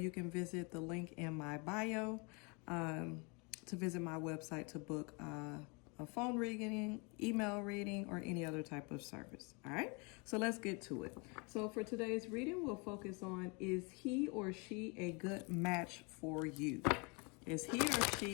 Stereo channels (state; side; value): quieter; right; 31.0 dB